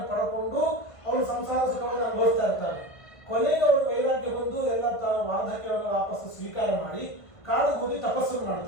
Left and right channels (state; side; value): late; right; 1.5 ms